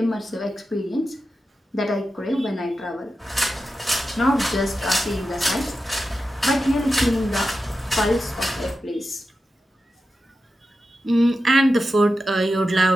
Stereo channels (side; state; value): both; normal; correlation 0.91